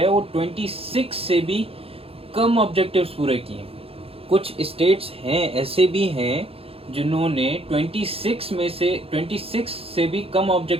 वो 26 से भी कम ऑब्जेक्टिव्स पूरे किए। कुछ स्टेट्स हैं ऐसे भी हैं जिन्होंने 26 से भी कम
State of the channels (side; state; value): left; late; 0.28 ms